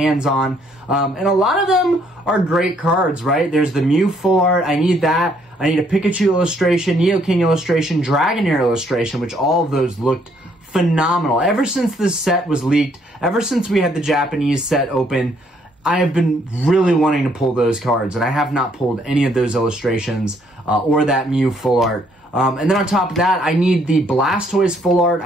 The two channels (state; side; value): normal; both; correlation 0.68